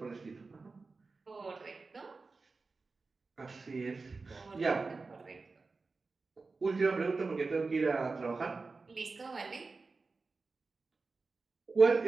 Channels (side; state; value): left; quieter; 4.0 dB